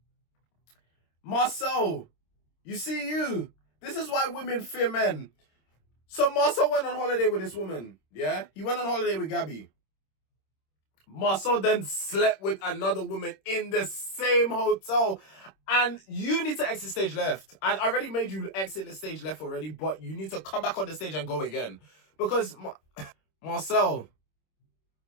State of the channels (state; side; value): late; right; 26 ms